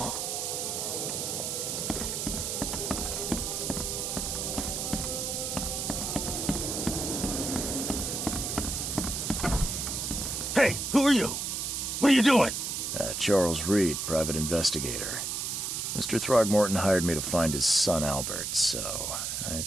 Hey, who are you? What are you doing? Charles Reed, private investigator. Mr. Throgmorton hired me to find his son Albert, so I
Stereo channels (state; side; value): noise; right; hiss, 2 dB below the sound